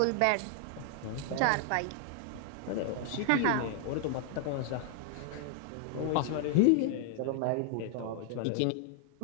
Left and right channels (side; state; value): both; different; correlation 0.00